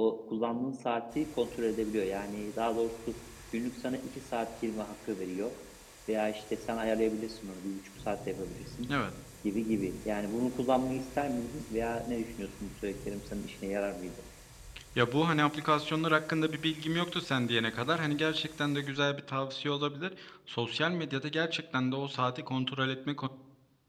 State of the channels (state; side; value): identical; both; correlation 1.00